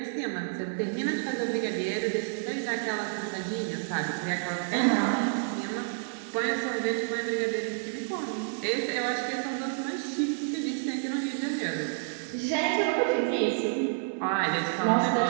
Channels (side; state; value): left; silent; 58 dB below the other